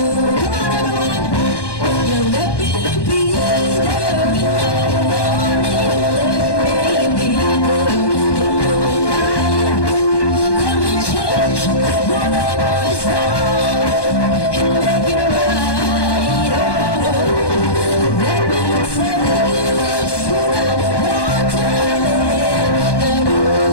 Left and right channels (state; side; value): late; right; 1.2 ms